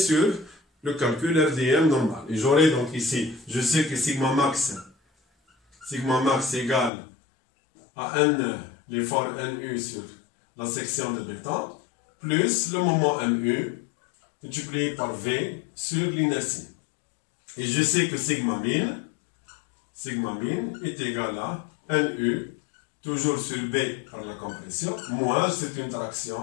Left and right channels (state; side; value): drops out; right; at 6.9 s